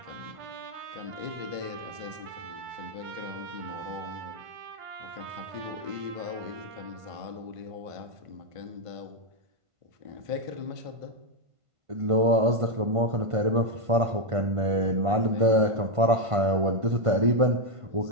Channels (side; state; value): left; late; 1.5 ms